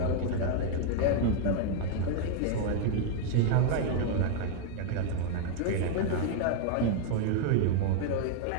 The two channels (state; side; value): different; both; correlation 0.00